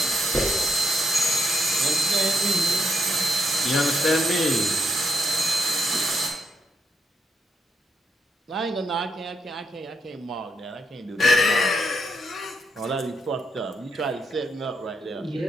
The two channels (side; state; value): both; normal; correlation 0.80